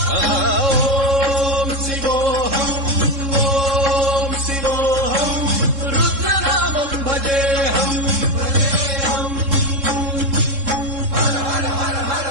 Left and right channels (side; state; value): left; late; 3.7 ms